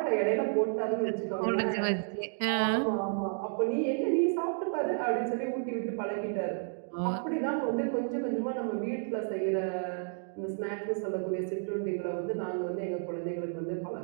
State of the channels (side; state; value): left; silent; 57 dB below the other